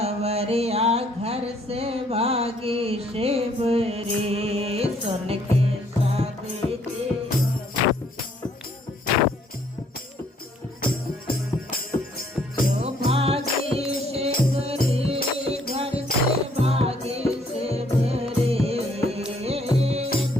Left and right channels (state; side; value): normal; both; correlation 0.65